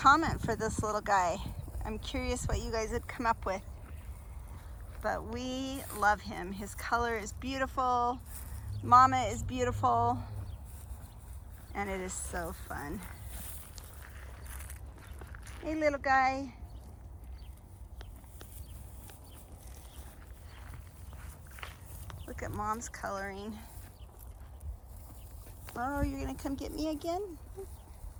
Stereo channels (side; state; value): both; identical; correlation 1.00